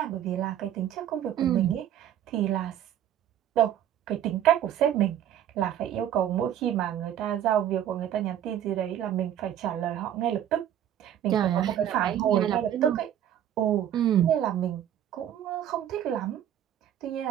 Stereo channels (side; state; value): left; quieter; 10.5 dB